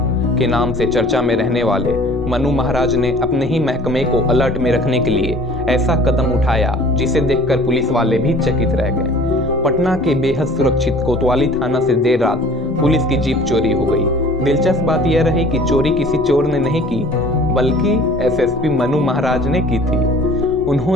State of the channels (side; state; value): both; normal; correlation 0.49